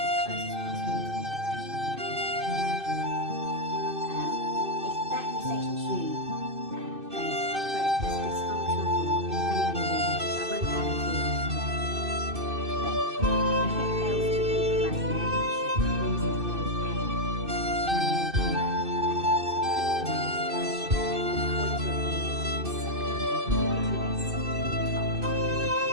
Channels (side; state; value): left; late; 2.6 ms